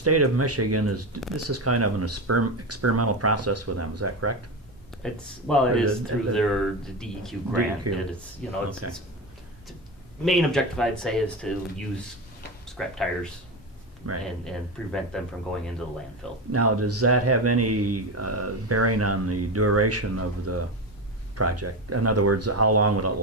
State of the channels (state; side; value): normal; both; correlation 0.19